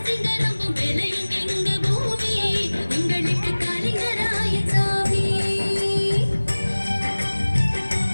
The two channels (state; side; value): inverted; both; correlation -1.00